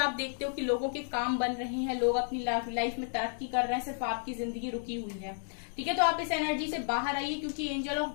देखते हो कि लोगों के काम बन रहे हैं, लोग अपनी लाइफ में तरक्की कर रहे हैं, सिर्फ आपकी जिंदगी रुकी हुई है। ठीक है, तो आप इस एनर्जी से बाहर आइए क्योंकि एंजल ऑफ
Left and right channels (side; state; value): right; silent; digital silence